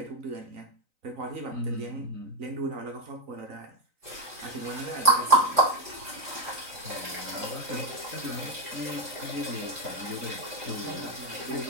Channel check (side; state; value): left; late; 3.9 ms